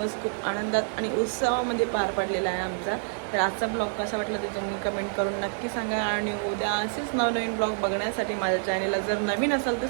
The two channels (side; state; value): left; silent; digital silence